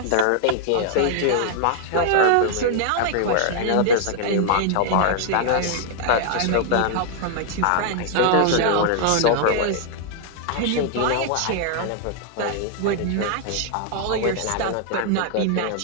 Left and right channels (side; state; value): both; different; correlation 0.00